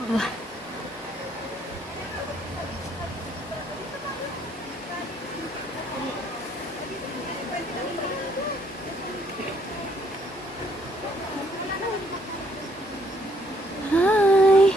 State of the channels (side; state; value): both; normal; correlation 0.67